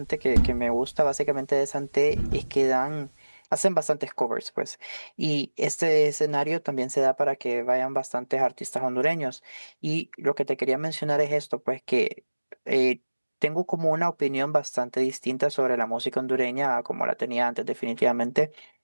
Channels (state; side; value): inverted; both; correlation -1.00